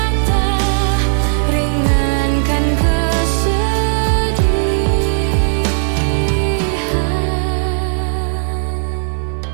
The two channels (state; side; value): silent; left; digital silence